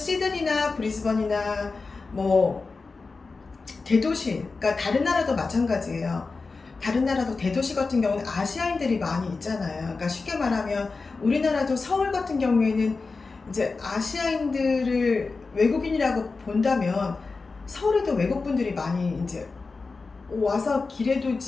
브리즈번이나 뭐 대도시, 그러니까 다른 나라도 마찬가지예요. 다른 나라도 대도시 같은 경우는 아시아인들이 많이 있잖아요. 그러니까 쉽게 말하면 우리나라도 서울 같은 경우에는 이제 아시아인들을 외국인이라고 본다면 서울에도 외국분들이 많이 이제 와서 길에도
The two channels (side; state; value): right; quieter; 4.1 dB